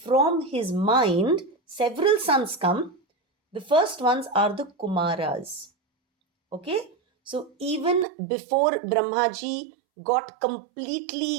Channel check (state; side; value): drops out; left; at 8.1 s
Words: his mind, several sons come. The first ones are the Kumaras. Okay? So even before Brahmaji got